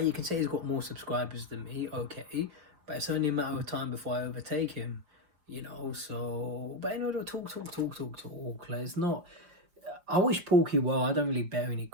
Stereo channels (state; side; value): late; left; 5.5 ms